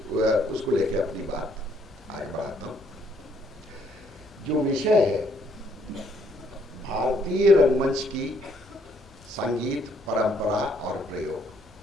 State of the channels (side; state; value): both; normal; correlation 0.68